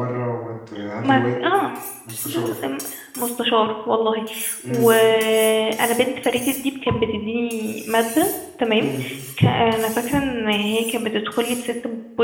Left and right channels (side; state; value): both; identical; correlation 1.00